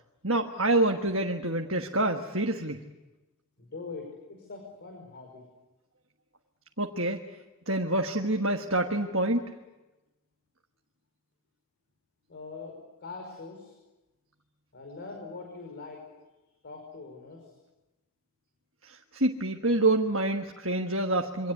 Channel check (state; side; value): normal; both; correlation -0.06